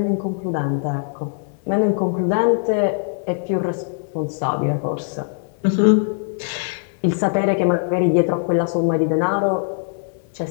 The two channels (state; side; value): silent; right; 58 dB below the other